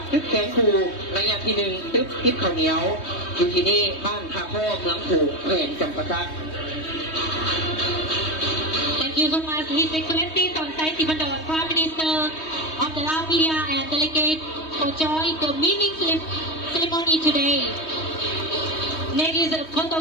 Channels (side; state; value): right; late; 3.2 ms